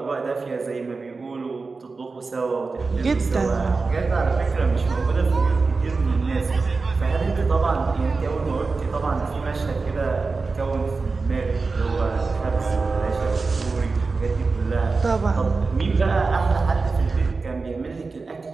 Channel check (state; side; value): quieter; left; 4.1 dB